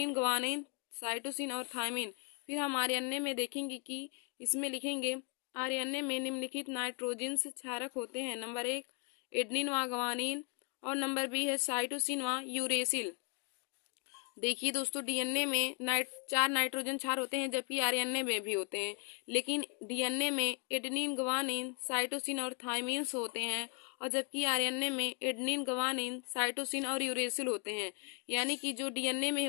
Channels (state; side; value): quieter; right; 36.0 dB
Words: ग्वानिन, साइटोसिन और थायमिन। फिर हम आरएनए में देखेंगे कि इसमें लिखेंगे आरएनए में निम्नलिखित नाइट्रोजन्स क्षारक होते हैं। नंबर 1 एडेनिन व ग्वानिन और नंबर बी है साइटोसिन व यूरेसिल। देखिए दोस्तों, डीएनए में 4 नाइट्रोजन क्षार होते हैं, जबकि आरएनए में भी होते हैं। लेकिन डीएनए में एडेनिन, ग्वानिन, साइटोसिन और थायमिन्स होते हैं और जबकि आरएनए में एडेनिन, ग्वानिन, साइटोसिन और यूरेसिल होते हैं। यानी कि जो डीएनए में